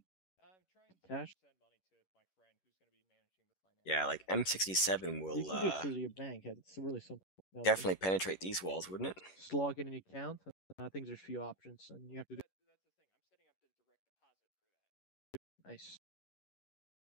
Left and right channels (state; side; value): late; right; 11 ms